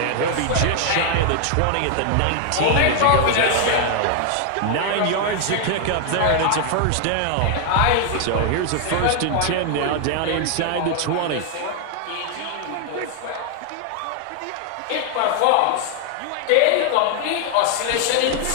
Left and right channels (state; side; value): different; both; correlation 0.00